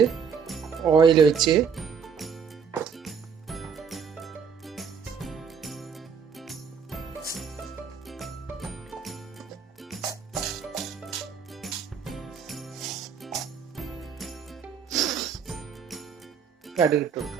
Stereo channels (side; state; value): left; quieter; 6.6 dB